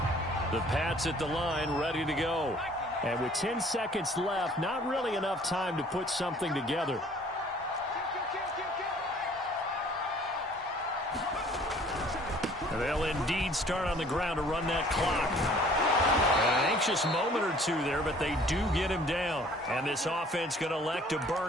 The Pats at the line, ready to go. And with 10 seconds left, not really enough time to put something together. And they'll indeed start on the ground to run that clock. An anxious moment or 2 there, but they do get him down. And this offense going to elect to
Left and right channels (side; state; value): both; normal; correlation 0.54